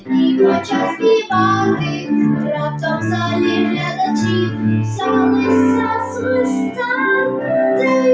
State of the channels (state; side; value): identical; both; correlation 1.00